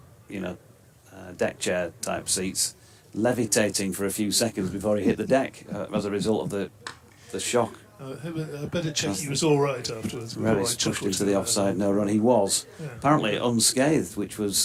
deck chair type seats, levitating for a few seconds before he hit the deck as a result of the shock. I better check he was all right afterwards. Revis pushed into the offside, no run. He was apparently unscathed, which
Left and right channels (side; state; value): both; identical; correlation 1.00